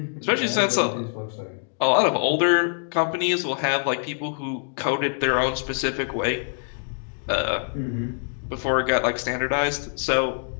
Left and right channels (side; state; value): right; silent; 58 dB below the other